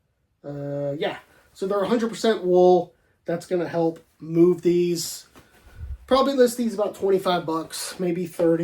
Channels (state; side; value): identical; both; correlation 1.00